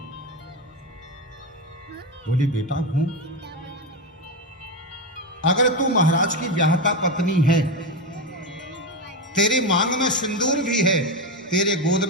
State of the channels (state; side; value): normal; both; correlation 0.14